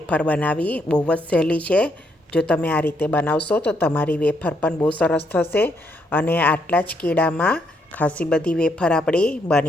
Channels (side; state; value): both; normal; correlation 0.75